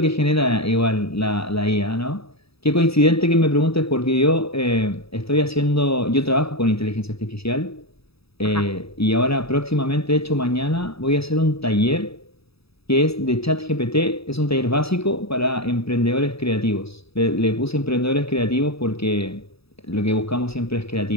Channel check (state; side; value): late; right; 0.77 ms